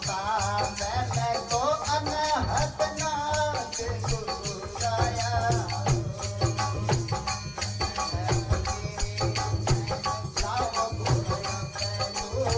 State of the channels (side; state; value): both; identical; correlation 1.00